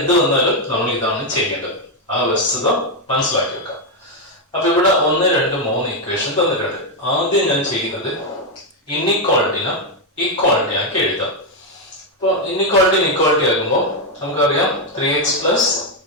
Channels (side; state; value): both; normal; correlation 0.03